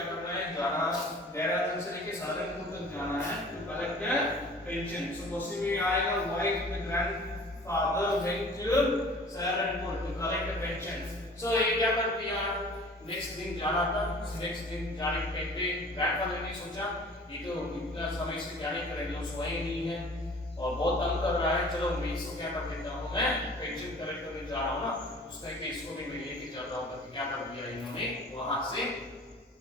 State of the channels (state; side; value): normal; both; correlation 0.47